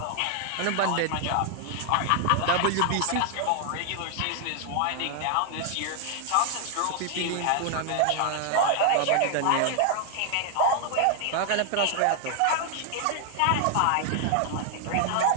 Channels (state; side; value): different; both; correlation 0.00